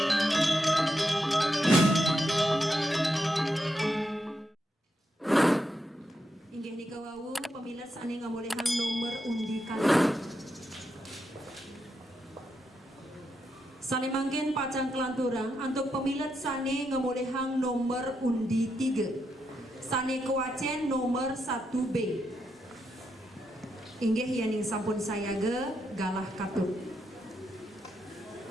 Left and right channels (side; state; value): both; normal; correlation 0.83